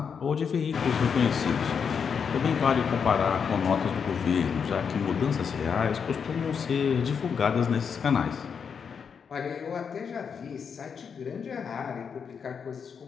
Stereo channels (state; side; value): quieter; right; 6.6 dB